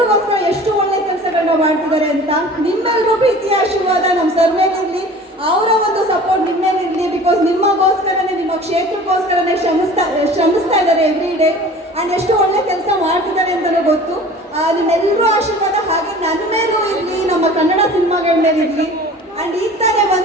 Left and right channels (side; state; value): both; normal; correlation 0.43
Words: ಎಷ್ಟು ಒಳ್ಳೆ ಕೆಲಸಗಳನ್ನ ಮಾಡ್ತಿದ್ದಾರೆ ಅಂತ. ನಿಮ್ಮೆಲ್ಲರೂ ಪ್ರೀತಿಯ ಆಶೀರ್ವಾದ ನಮ್ಮ ಸರ್ ಮೇಲಿರಲಿ, ಅವರ ಒಂದು ಸಪೋರ್ಟ್ ನಿಮ್ಮ ಮೇಲಿರಲಿ. ಬಿಕಾಸ್ ನಿಮಗೋಸ್ಕರನೇ, ನಿಮ್ಮ ಕ್ಷೇತ್ರಕ್ಕೋಸ್ಕರನೇ ಶ್ರಮಿಸ್ತಾ ಇದ್ದಾರೆ ಎವ್ರಿ ಡೇ. ಆ್ಯಂಡ್ ಎಷ್ಟು ಒಳ್ಳೆ ಕೆಲಸ ಮಾಡ್ತಿದ್ದಾರೆ ಅಂತಲೇ ಗೊತ್ತು. ನಿಮ್ಮೆಲ್ಲರೂ ಆಶೀರ್ವಾದ ಹಾಗೆ ನನ್ನ ಮೇಲೂ ಇರಲಿ, ನಮ್ಮ ಕನ್ನಡ ಸಿನಿಮಾಗಳ ಮೇಲೆ ಇರಲಿ. ಆ್ಯಂಡ್ ಈಗ ತಾನೇ